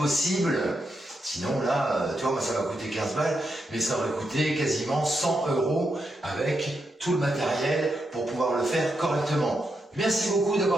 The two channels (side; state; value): both; normal; correlation 0.84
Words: Sinon là, tu vois, moi ça va coûter 15 balles, mais ça aurait coûté quasiment 100 € avec tout le matériel pour pouvoir le faire correctement. Merci beaucoup